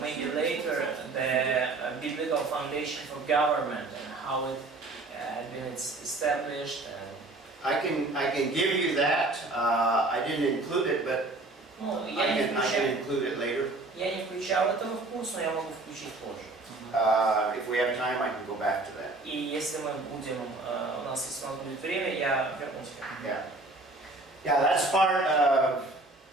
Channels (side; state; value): left; quieter; 3.0 dB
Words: maybe later the biblical foundation for government and how it had been established? I can give you that. I didn't include it, but Ну, I can include it later. я не включал этого в курс, но я могу включить позже. If we have time, I can go back to that. И если мы будем, у нас если у нас будет время, я вернусь к этому. Yeah, that's part of